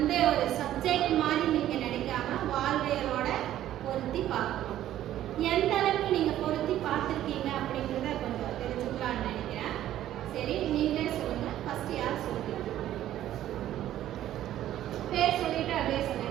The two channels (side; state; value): left; quieter; 12.6 dB